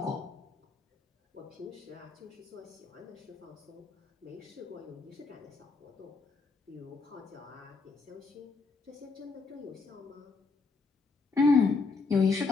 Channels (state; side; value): quieter; right; 4.2 dB